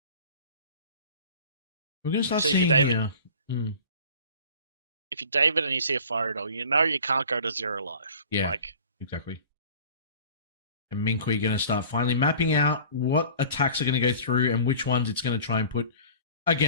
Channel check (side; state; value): both; inverted; correlation -0.44